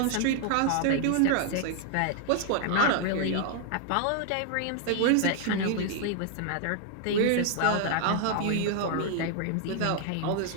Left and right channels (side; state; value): both; different; correlation 0.00